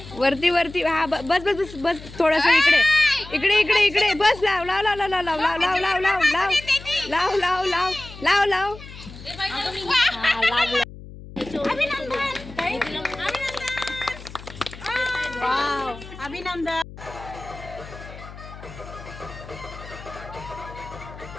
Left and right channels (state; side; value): noise; left; hum, 15 dB below the sound